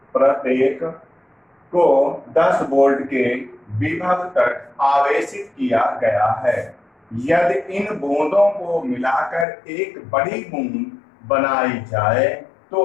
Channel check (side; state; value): right; drops out; at 9.5 s